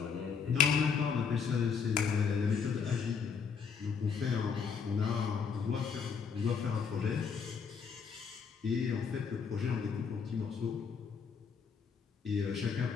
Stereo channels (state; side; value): quieter; right; 6.1 dB